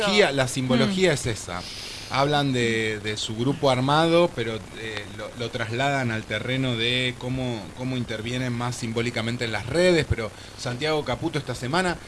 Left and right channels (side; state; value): both; identical; correlation 1.00